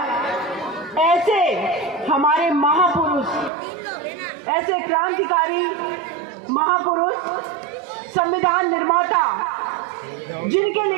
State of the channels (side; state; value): left; drops out; at 3.5 s